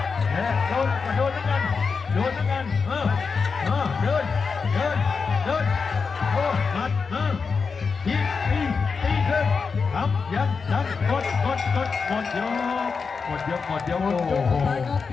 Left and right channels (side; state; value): right; quieter; 5.1 dB